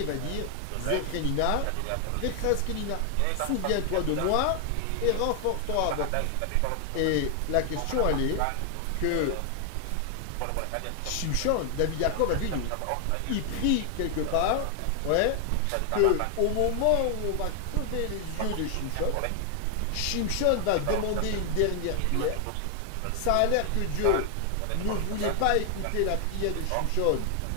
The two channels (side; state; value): both; different; correlation 0.00